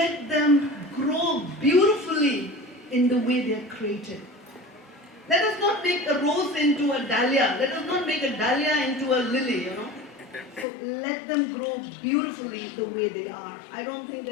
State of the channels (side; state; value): right; drops out; at 10.7 s